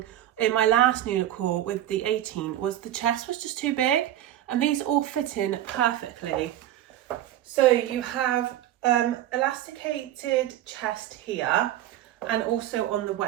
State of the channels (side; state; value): left; quieter; 12.7 dB